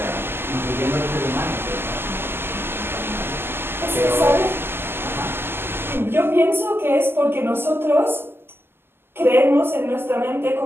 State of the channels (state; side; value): late; left; 0.11 ms